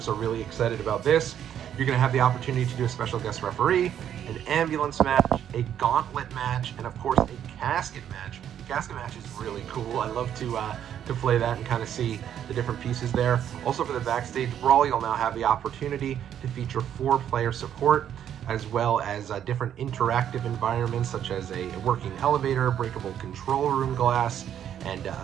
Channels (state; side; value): quieter; left; 9.8 dB